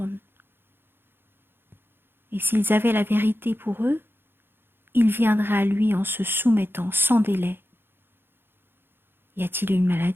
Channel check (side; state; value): left; late; 0.10 ms